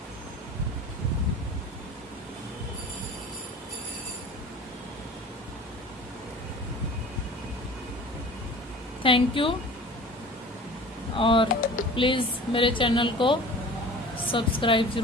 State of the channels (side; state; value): both; normal; correlation 0.42